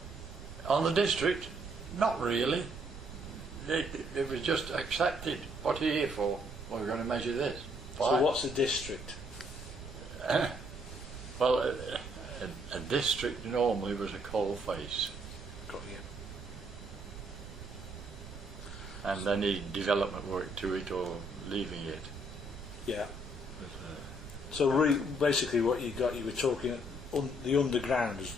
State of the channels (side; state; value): right; noise; rumble, 13 dB below the sound